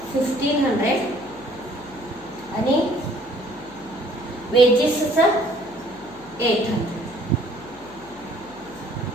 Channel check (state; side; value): noise; left; hum, 23 dB below the sound